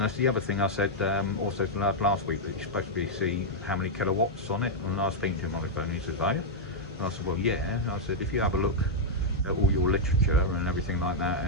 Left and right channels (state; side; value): normal; both; correlation -0.04